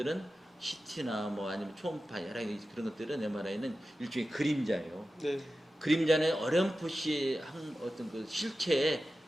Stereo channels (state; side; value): normal; both; correlation 0.93